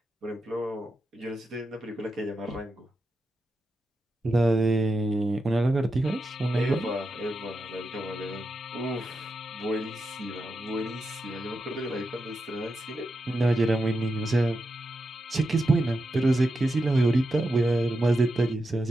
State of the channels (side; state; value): both; normal; correlation 0.87